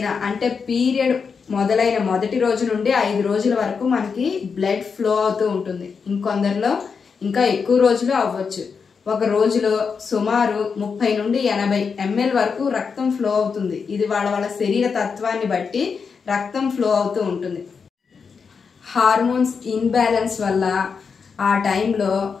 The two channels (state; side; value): quieter; right; 5.7 dB